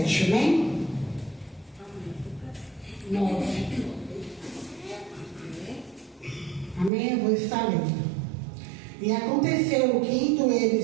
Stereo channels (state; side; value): drops out; left; at 6.9 s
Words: amém? 9. Amém? Eu vou estar lendo. E aconteceu que, indo